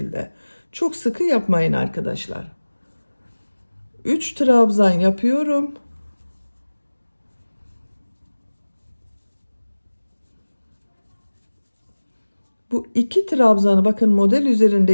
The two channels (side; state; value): both; inverted; correlation -1.00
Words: Çok sıkı yapmayın arkadaşlar. 3 trabzan yapıyorum. Bu 2 trabzanı bakın model